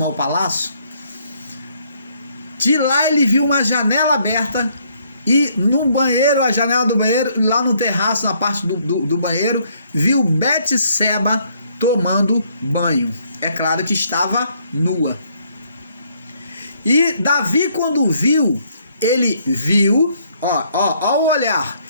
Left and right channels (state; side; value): inverted; both; correlation -0.68